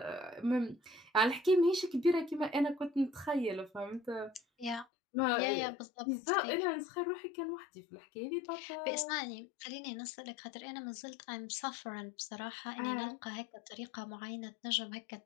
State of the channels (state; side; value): drops out; right; at 4.9 s